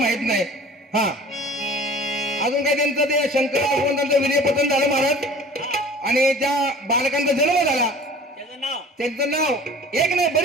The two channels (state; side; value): normal; both; correlation 0.45